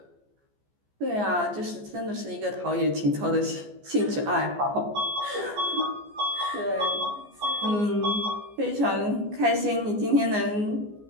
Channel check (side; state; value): left; late; 14 ms